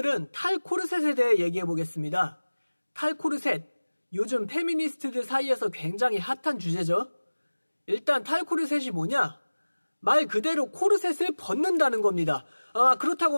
탈코르셋에 대해 얘기해 보겠습니다. 탈코르셋, 요즘 페미니스트들 사이에서 굉장히 핫한 주제죠. 일단 탈코르셋이 뭐냐? 말 그대로 코르셋을 벗는다는 겁니다. 그렇다고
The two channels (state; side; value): inverted; both; correlation -1.00